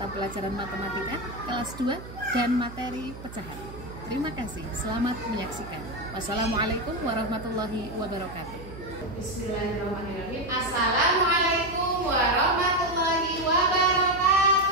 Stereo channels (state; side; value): noise; right; hum, 14 dB below the sound